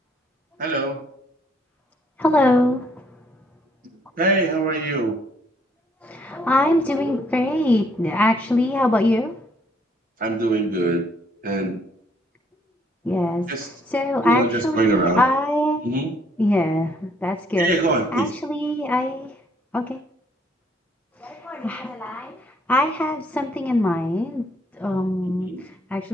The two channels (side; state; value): both; normal; correlation 0.66